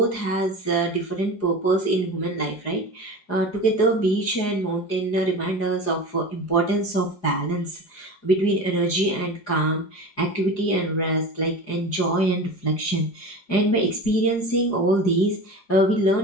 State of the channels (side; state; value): right; late; 4.9 ms